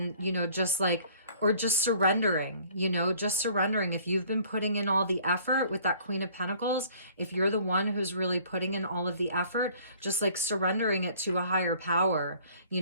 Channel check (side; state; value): both; inverted; correlation -0.55